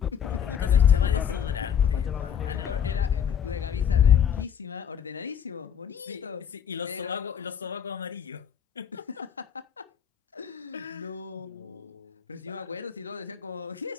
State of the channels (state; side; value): quieter; right; 8.4 dB